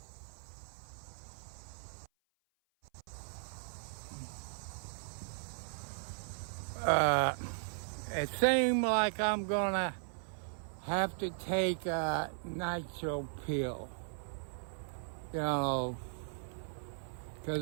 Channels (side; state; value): left; silent; 53 dB below the other